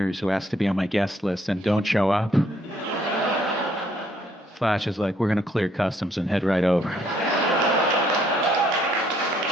who ask to be on my guest list and don't show up. Slash is like, we're going to clear customs and head right over.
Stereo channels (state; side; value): normal; both; correlation 0.67